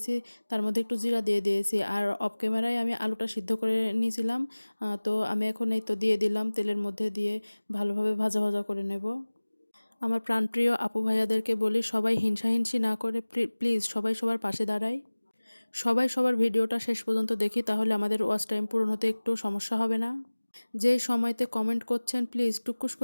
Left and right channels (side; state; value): both; inverted; correlation -1.00